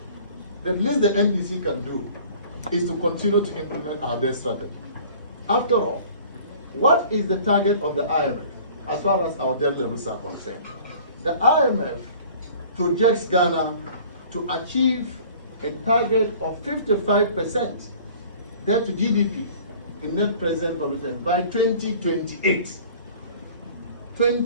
The least the NDC can do is to continue to implement our debt strategy. After all, what is the target of the IMF as far as our debt levels are concerned? The IMF projects Ghana to achieve a target of 55% debt to GDP in net present value terms by 2028.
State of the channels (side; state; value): both; inverted; correlation -0.48